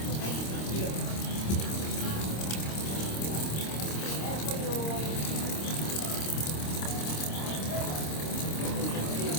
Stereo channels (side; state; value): right; late; 26 ms